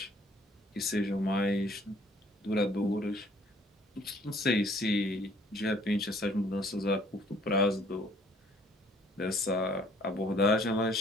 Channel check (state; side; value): normal; both; correlation 0.59